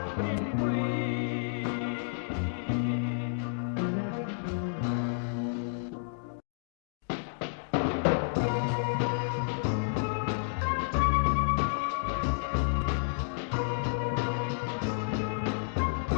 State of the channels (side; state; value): right; silent; digital silence